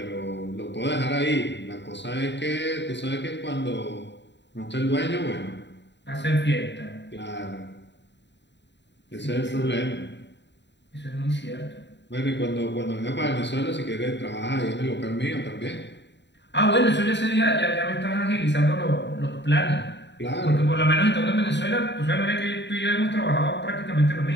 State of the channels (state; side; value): late; right; 0.52 ms